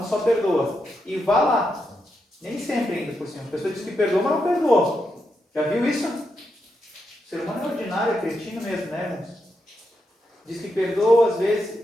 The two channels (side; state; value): both; normal; correlation 0.84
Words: só perdoa. E vá lá. Nem sempre ainda por cima. A pessoa diz que perdoa, mas não perdoa. Já viu isso? O ser humano é ordinário, é cretino mesmo, né, irmãos? Diz que perdoa, às